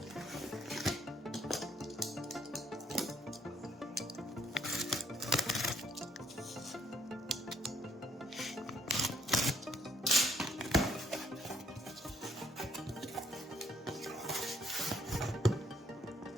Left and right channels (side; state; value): both; normal; correlation 0.69